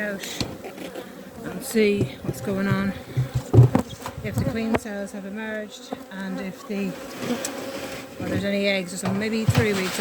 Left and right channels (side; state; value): both; identical; correlation 1.00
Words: and see what's going on, if the queen cells have emerged and if the or there's any eggs or something. Maybe 3 weeks.